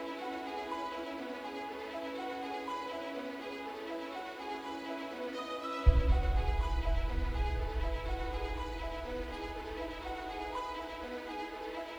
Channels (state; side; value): noise; left; hiss, 29 dB below the sound